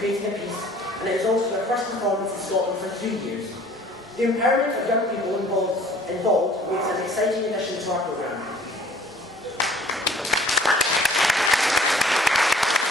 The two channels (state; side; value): normal; both; correlation 0.53